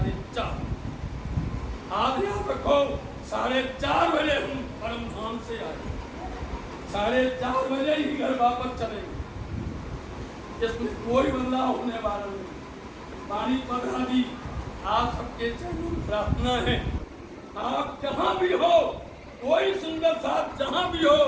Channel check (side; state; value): both; identical; correlation 1.00